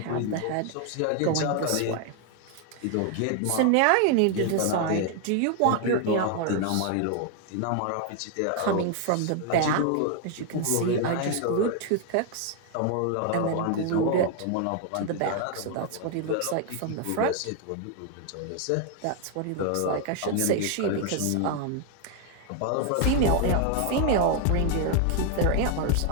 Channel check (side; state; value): both; different; correlation 0.00